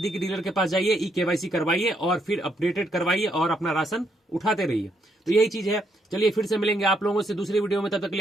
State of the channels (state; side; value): normal; both; correlation 0.75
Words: डीलर के पास जाइए, ई-केवाईसी करवाइए और फिर अपडेटेड करवाइए और अपना राशन उठाते रहिए। तो यही चीज है। चलिए फिर से मिलेंगे आप लोगों से दूसरी वीडियो में, तब तक के